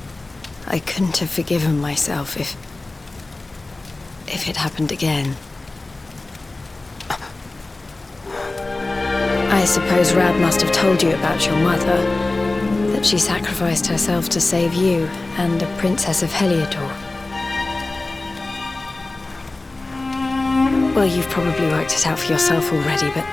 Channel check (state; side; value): quieter; right; 3.1 dB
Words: I couldn't have forgiven myself if it happened again. I suppose Rab must have told you about your mother, that she sacrificed herself to save you and the Princess of Heliodor. Well, you've probably worked it out for yourself already, but